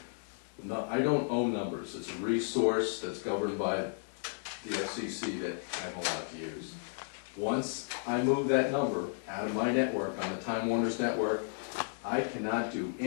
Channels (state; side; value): silent; right; digital silence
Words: No, I don't own numbers. It's a resource that's governed by the FCC that I'm allowed to use. Once I move that number out of my network, on the Time Warner's network, I cannot do